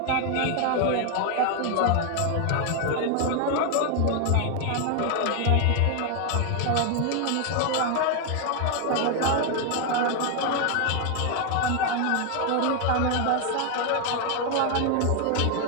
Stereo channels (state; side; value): different; both; correlation 0.01